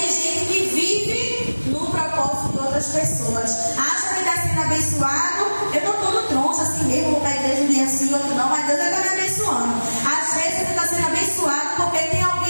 gente que vive no propósito de outras pessoas. Acha que está sendo abençoado. Eu estou todo troncho assim mesmo, vou para a igreja um dia assim, outro não, mas Deus está me abençoando. Às vezes você está sendo abençoado porque tem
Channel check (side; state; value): both; inverted; correlation -1.00